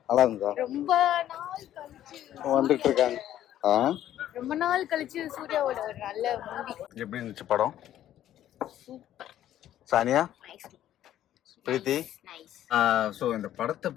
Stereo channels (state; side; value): quieter; right; 12.0 dB